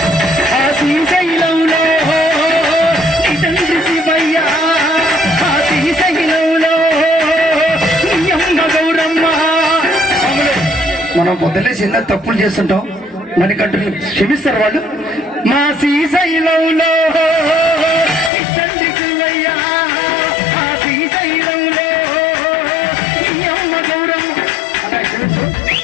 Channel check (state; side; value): drops out; right; at 18.3 s